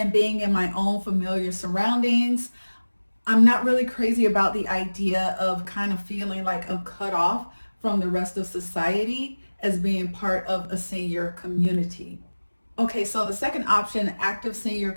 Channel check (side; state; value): both; inverted; correlation -1.00